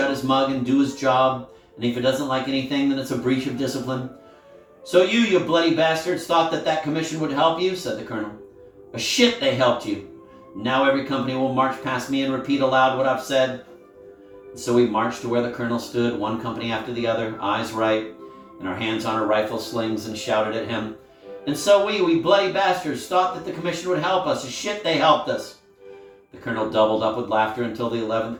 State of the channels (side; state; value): both; identical; correlation 1.00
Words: his mug and do his job, and if he doesn't like anything, then it's a breach of discipline. So you bloody bastards, thought that commission would help you, said the colonel. A shit they helped you. Now every company will march past me and repeat aloud what I've said. And so we marched to where the colonel stood, one company after the other, eyes right, and our hands on our rifle slings, and shouted at him. And so we bloody bastards, thought that the commission would help us. A shit they helped us. The colonel doubled up with laughter until the